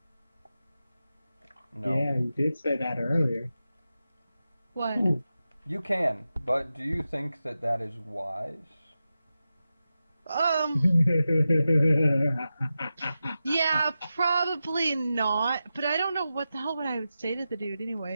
No. Yeah, you did say that earlier. What? You can, but do you think that that is wise? Yeah, probably not. But I don't know what the hell would I would say to the dude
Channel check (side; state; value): both; inverted; correlation -0.92